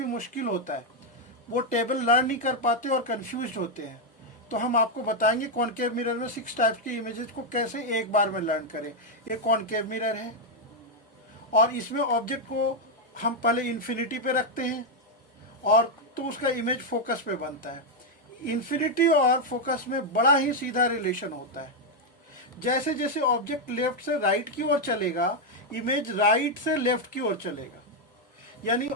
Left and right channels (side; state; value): both; normal; correlation 0.01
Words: मुश्किल होता है, वो टेबल लर्न नहीं कर पाते और कंफ्यूज होते हैं। तो हम आपको बताएंगे कॉनकेव मिरर में 6 टाइप्स की इमेजेस को कैसे एक बार में लर्न करें। ये कॉनकेव मिरर है और इसमें ऑब्जेक्ट को हम पहले इन्फिनिटी पे रखते हैं और तो उसका इमेज फोकस पे बनता है। इन्फिनिटी और फोकस में बड़ा ही सीधा रिलेशन होता है। जैसे जैसे ऑब्जेक्ट लेफ्ट से राइट की ओर चलेगा, इमेज राइट से लेफ्ट की ओर चलेगा। यानी